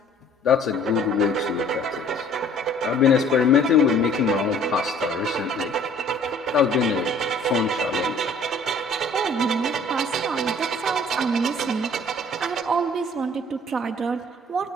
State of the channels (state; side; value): normal; both; correlation 0.54